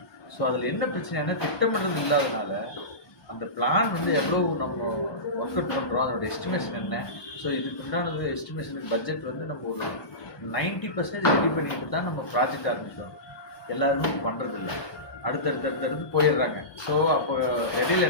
ஸோ அதில் என்ன பிரச்சனைனா திட்டமிடுறது இல்லாதனால அந்த பிளான் எவ்வளோ நம்ம ஒர்க் அவுட் பண்ணுறோம், அதோட எஸ்டிமேஷன் என்ன. ஸோ இதுக்கு உண்டானது எஸ்டிமேஷனுக்கு பட்ஜெட் நம்ம ஒரு 90% ரெடி பண்ணிட்டு தான் நம்ம ப்ராஜெக்ட் ஆரம்பிக்கிறோம். எல்லாருமே பண்ணுறதில்ல, அடுத்தடுத்து போயிடுறாங்க. ஸோ அப்போ இடையில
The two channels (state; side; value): late; right; 1.2 ms